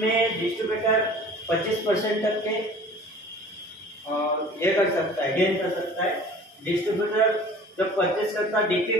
डिस्ट्रीब्यूटर 25% तक के ये कर सकता है, गेन कर सकता है। डिस्ट्रीब्यूटर जब परचेस करता है डीपी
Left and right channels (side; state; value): both; normal; correlation 0.45